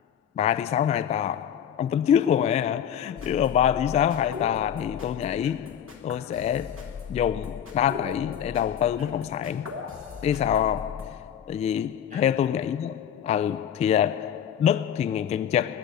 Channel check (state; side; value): quieter; right; 9.2 dB